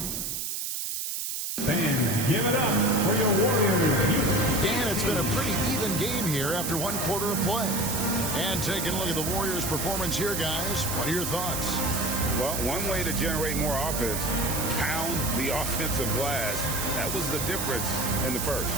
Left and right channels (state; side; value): noise; right; hiss, 3 dB below the sound